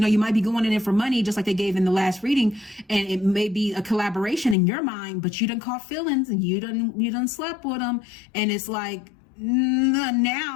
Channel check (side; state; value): right; drops out; at 4.5 s